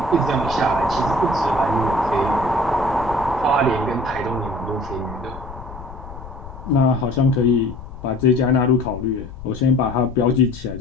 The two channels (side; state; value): left; noise; rumble, 14 dB below the sound